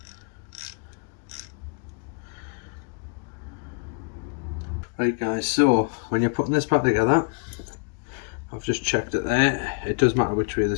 Right guys, so when you're putting this back together, I've just checked it there. It does matter which way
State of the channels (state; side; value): quieter; right; 33.7 dB